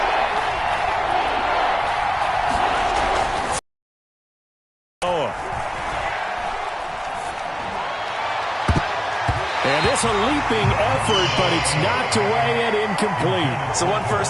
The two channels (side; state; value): both; identical; correlation 1.00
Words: And it's a leaping effort, but it's knocked away and incomplete. So 1